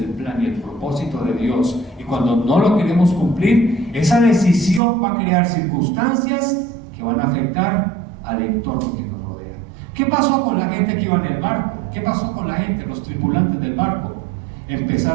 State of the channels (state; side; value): drops out; left; at 4.8 s